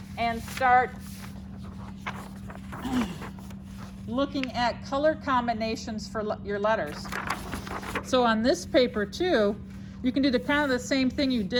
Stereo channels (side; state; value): both; identical; correlation 1.00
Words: and start looking at color combinations for your letters. So on this paper too, you can do the kind of the same thing you